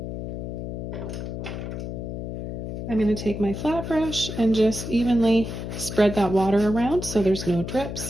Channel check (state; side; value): noise; left; hum, 6 dB below the sound